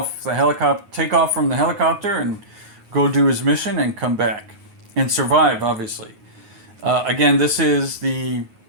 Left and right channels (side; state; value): left; late; 9.5 ms